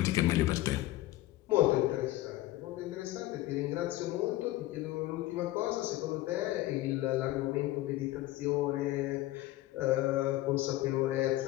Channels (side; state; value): right; quieter; 16.7 dB